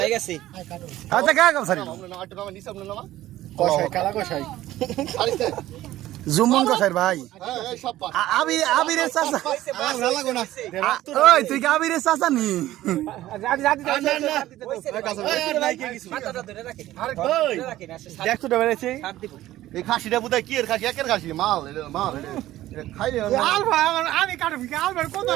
গেছে আচ্ছা কা কাম সারি ওমলা আট নামা নিছে ওমলা নামা কষাই কালা কষাই আরিতে জুমন কষাই ভাই হ্যাঁ এই সব পা আবিরে চাচা ভালো লাগো না ওই তুই কি আবিরে চাচা নি মাথাটা ধরে রাখি আরে কই দেখছো তো বেরেছি সাত দিব এই খাসিটা বুদাই কি এর খাসি একের খাসি মাল এটা খাইলে আমি কাটবি আলবার কোন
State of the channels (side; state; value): left; quieter; 14.9 dB